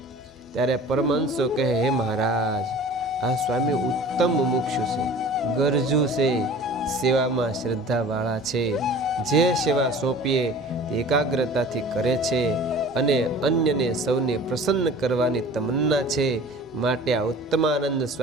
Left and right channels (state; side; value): normal; both; correlation 0.44